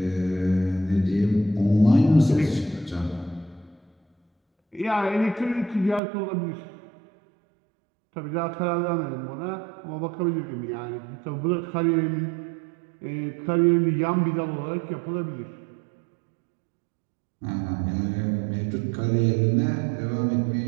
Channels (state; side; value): drops out; left; at 6.0 s